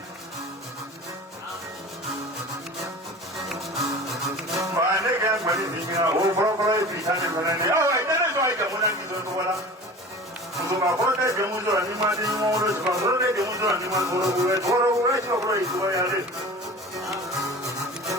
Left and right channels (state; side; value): normal; both; correlation 0.38